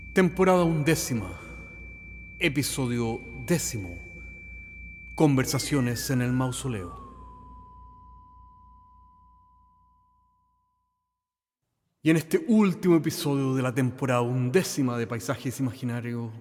Temporada 11, episodio 10. Conversaciones en el mausoleo. Y en este último episodio de la temporada 11 de Paisajes Imaginarios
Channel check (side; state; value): both; identical; correlation 1.00